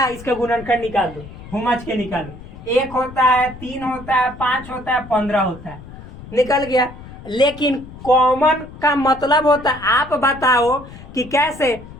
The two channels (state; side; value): noise; left; rumble, 16 dB below the sound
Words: इसका गुणनखंड निकाल दो, हुमच के निकालो। 1 होता है, 3 होता है, 5 होता है, 15 होता है, निकल गया। लेकिन कॉमन का मतलब होता है, आप बताओ कि कैसे।